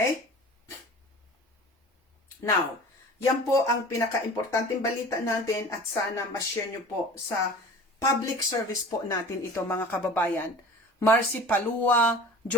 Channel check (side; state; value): both; normal; correlation 0.41